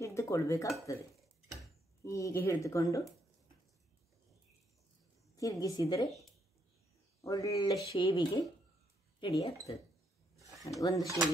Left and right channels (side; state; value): both; normal; correlation 0.75